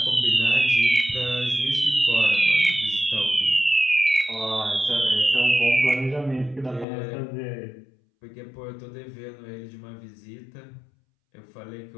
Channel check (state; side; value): drops out; right; at 6.9 s